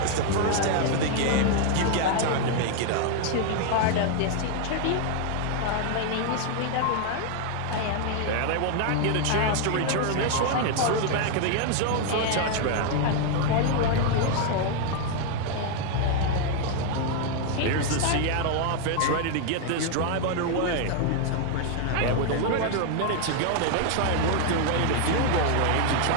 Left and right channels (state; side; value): different; both; correlation 0.00